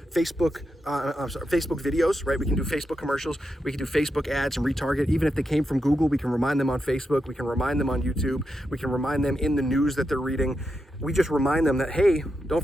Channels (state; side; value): normal; both; correlation 0.86